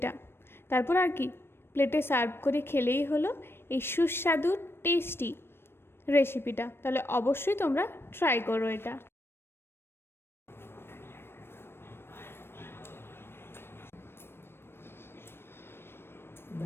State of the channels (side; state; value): right; late; 0.11 ms